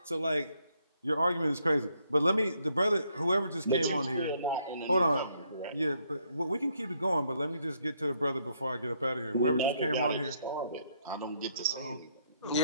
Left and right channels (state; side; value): inverted; both; correlation -0.72